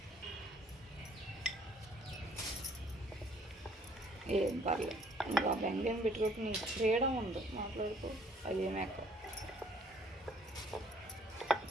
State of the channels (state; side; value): normal; both; correlation 0.60